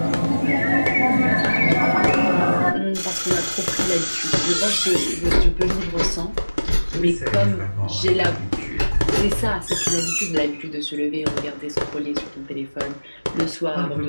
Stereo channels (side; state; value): both; inverted; correlation -1.00